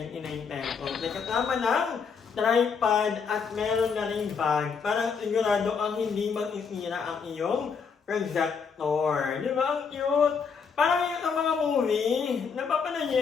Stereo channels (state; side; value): quieter; right; 5.9 dB